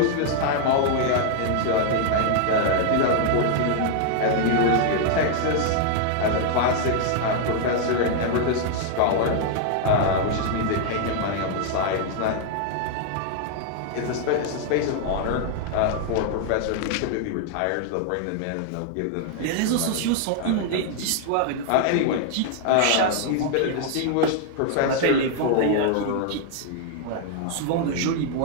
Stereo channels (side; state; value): both; different; correlation 0.00